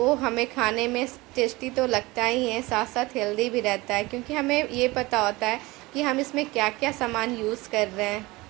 हमें खाने में टेस्टी तो लगता ही है, साथ साथ हेल्दी भी रहता है, क्योंकि हमें ये पता होता है कि हम इसमें क्या क्या सामान यूज़ कर रहे हैं।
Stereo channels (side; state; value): left; quieter; 21.6 dB